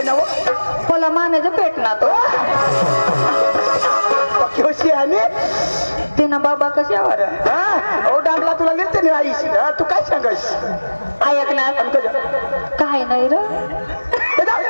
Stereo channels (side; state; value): both; inverted; correlation -1.00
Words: ना मला मानेचं पेट ना तो कशी आणि ते ना बाबा कशावर ओ डांगला तुला लिहिते नाही आईस तू काय सांगस ऐक ना काय नाही र